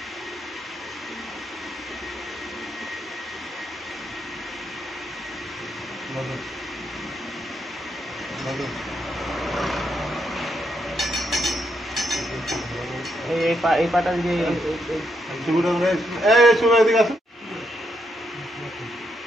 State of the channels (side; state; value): both; normal; correlation 0.78